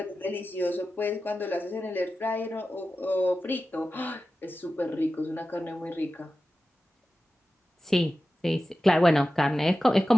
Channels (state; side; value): normal; both; correlation 0.94